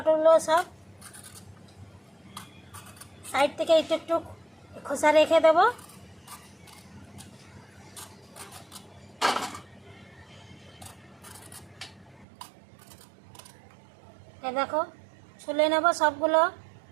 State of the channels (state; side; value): drops out; left; at 12.2 s